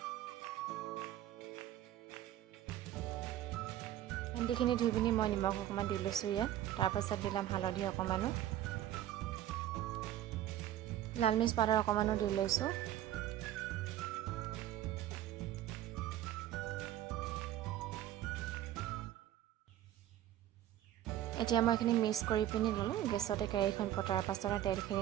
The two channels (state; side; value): quieter; left; 12.6 dB